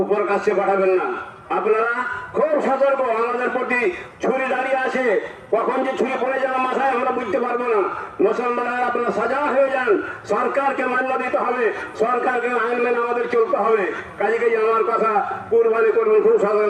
উপর কাছে পাঠাবেন না। আপনারা খুব সতর্ক, আমাদের প্রতি ছুরি দাঁড়িয়ে আসে, কখন যে ছুরি পড়ে যাওয়ার মাথায় আমরা বুঝতে পারবো না। মুসলমানরা আপনারা সাজা হয়ে যান, সরকারকে মান্য দিতে হবে, সরকারকে আইন মেনে আমাদের চলতে হবে। কাজে কাজে আমার কথা, কুরবানি করবেন খুব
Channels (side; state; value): both; identical; correlation 1.00